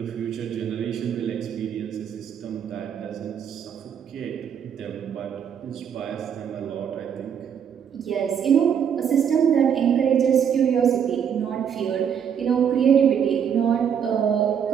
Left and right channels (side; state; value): left; quieter; 8.0 dB